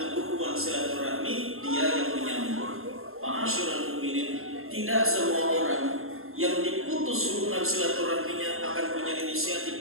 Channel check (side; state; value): left; late; 0.61 ms